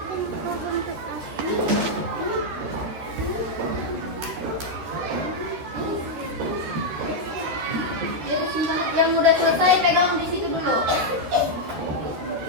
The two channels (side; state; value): left; late; 13 ms